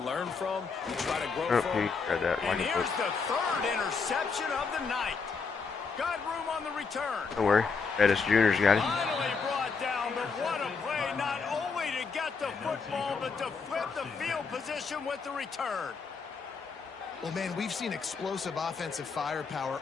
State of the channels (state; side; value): quieter; right; 5.1 dB